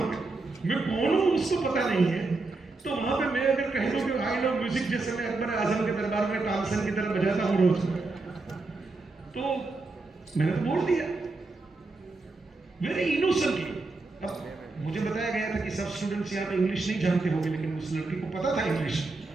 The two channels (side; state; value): left; quieter; 3.5 dB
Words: पे मैं कौन हूं उसको पता नहीं है। तो वहां पे मैं अगर कह दूं कि आई लव म्यूजिक, जैसे मैं अकबर आजम के दरबार में तानसेन की तरह बजाता हूं रोज, तो मैंने तो बोल दिया वेरी इनोसेंटली। अब मुझे बताया गया था कि सब स्टूडेंट्स यहाँ पे इंग्लिश नहीं जानते होंगे, लेकिन उस लड़की को पता था इंग्लिश।